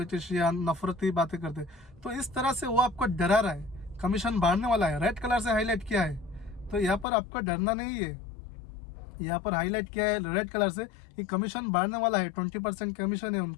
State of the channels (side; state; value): right; drops out; at 7.1 s